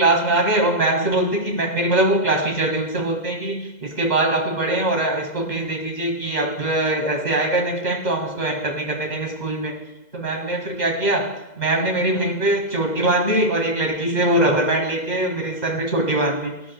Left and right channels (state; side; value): late; right; 2.0 ms